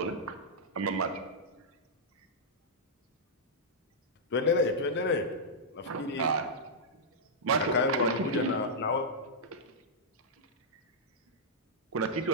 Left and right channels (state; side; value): normal; both; correlation -0.10